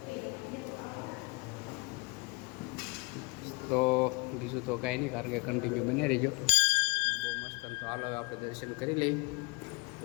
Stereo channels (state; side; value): quieter; right; 27.4 dB